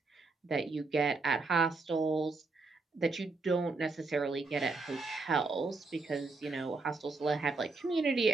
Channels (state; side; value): quieter; left; 3.8 dB